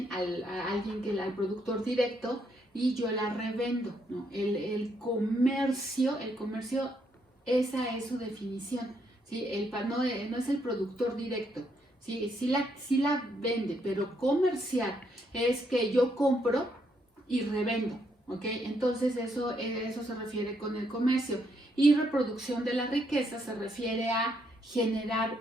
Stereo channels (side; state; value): both; normal; correlation 0.75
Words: al productor directo, y yo la revendo, ¿no? El comercio, esa es su definición, ¿sí? No es el productor directo, ¿sí? Sí la vende, pero comercial es que yo compro y revendo, ¿ok? Entonces eso se refiere con el comercio. Y reproducción de la riqueza se refiere a generar